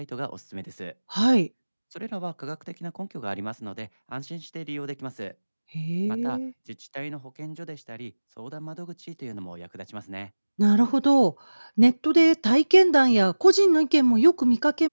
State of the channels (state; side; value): inverted; both; correlation -1.00